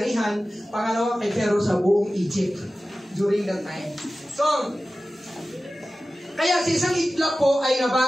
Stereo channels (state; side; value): normal; both; correlation 0.95